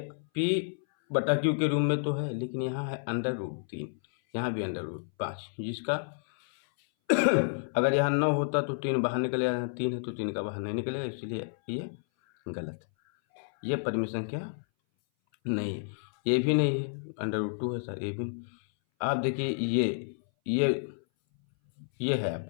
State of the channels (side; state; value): right; silent; 58 dB below the other